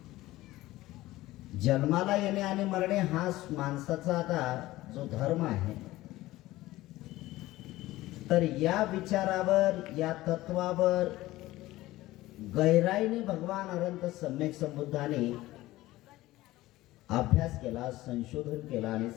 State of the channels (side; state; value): right; quieter; 17.2 dB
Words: जन्माला येणे आणि मरणे हा माणसाचा आता जो धर्म आहे, तर या विचारावर, या तत्वावर गहराईने भगवान अनंत सम्यक संबुद्धाने अभ्यास केला, संशोधन केला आणि